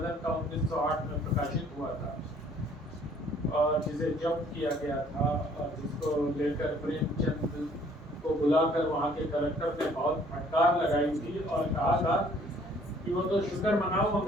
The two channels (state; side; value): normal; both; correlation 0.59